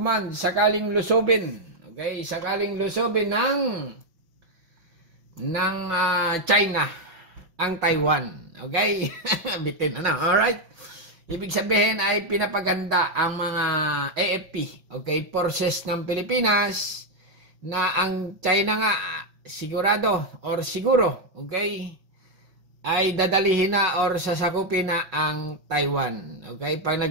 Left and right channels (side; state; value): left; late; 5.5 ms